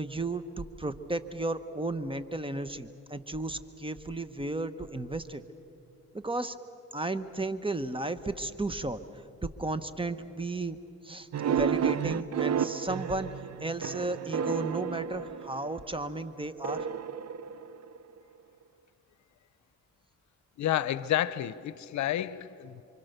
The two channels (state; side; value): normal; both; correlation 0.25